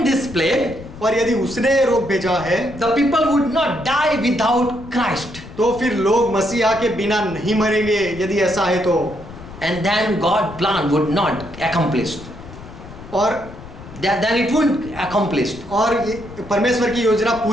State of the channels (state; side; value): noise; left; rumble, 15 dB below the sound